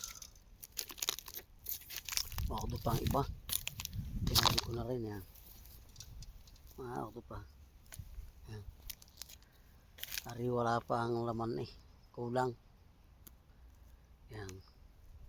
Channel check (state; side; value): identical; both; correlation 1.00